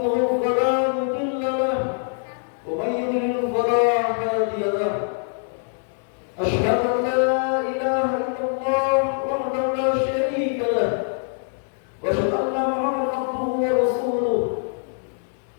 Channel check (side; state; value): right; silent; 63 dB below the other